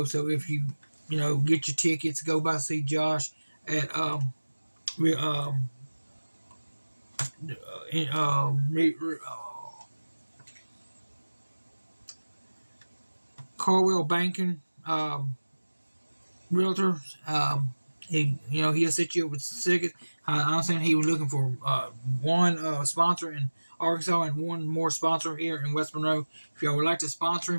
So if you get your tickets, go by see Josh at Carwell Banking Realtors. He'll set you up with tickets. I understand he was looking for one sponsor in Arkansas and one more sponsor here in West Monroe. If y'all would like to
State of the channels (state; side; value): inverted; both; correlation -1.00